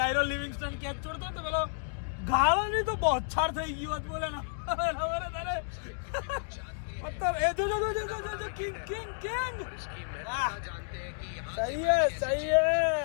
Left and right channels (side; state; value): right; silent; digital silence